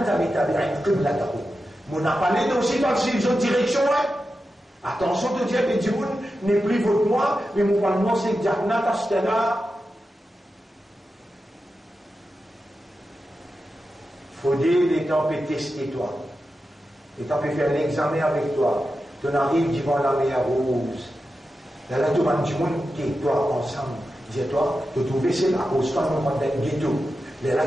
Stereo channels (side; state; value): both; normal; correlation 0.91